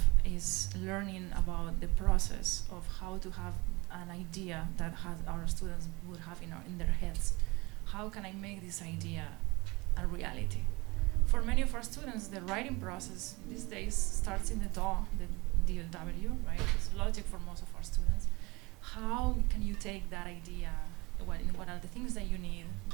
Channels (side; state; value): left; quieter; 24.2 dB